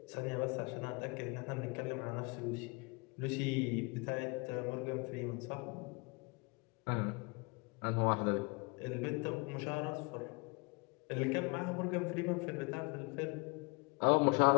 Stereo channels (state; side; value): quieter; right; 29.7 dB